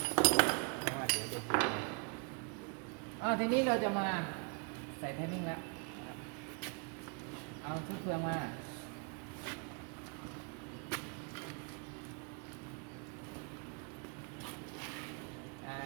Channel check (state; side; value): quieter; left; 35.5 dB